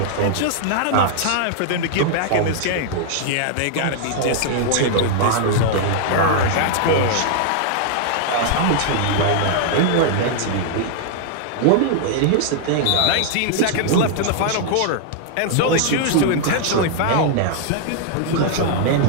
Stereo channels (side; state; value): both; different; correlation -0.01